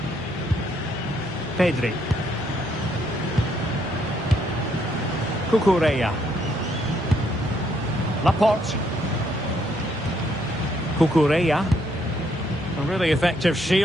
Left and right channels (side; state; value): both; normal; correlation 0.72